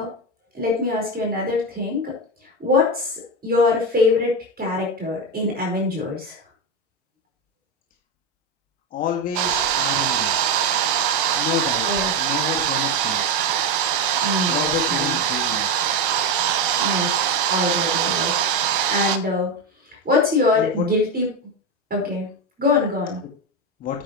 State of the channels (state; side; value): normal; both; correlation 0.13